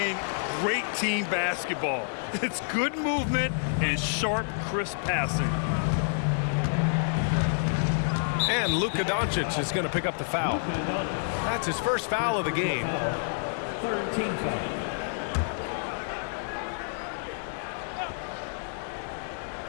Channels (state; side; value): silent; right; digital silence